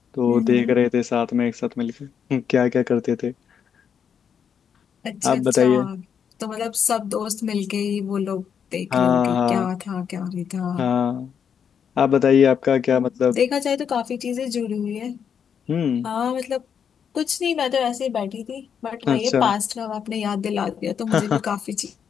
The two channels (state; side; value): quieter; right; 7.6 dB